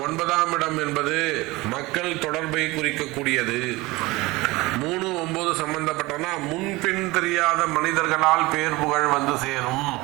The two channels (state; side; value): quieter; left; 21.4 dB